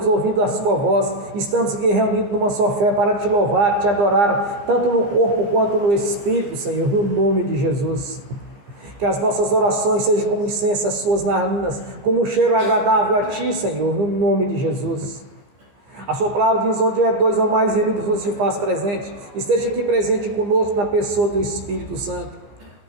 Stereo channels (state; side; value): late; left; 15 ms